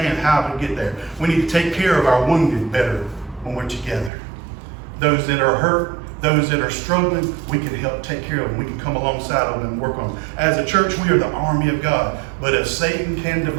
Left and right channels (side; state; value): left; drops out; at 4.1 s